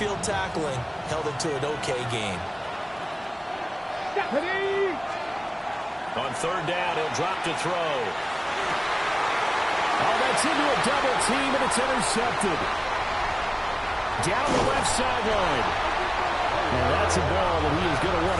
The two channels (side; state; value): both; identical; correlation 1.00